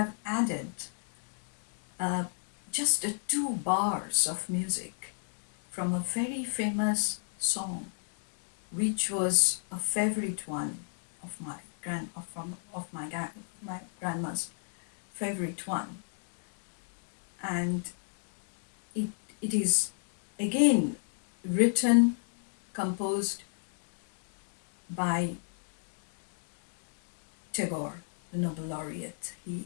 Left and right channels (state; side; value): silent; right; digital silence